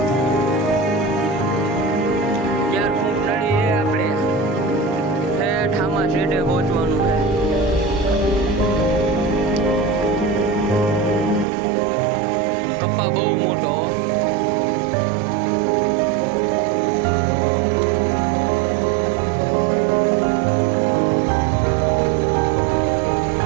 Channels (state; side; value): drops out; left; at 11.5 s